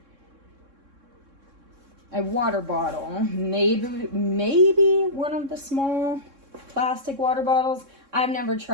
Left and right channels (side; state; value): left; late; 3.6 ms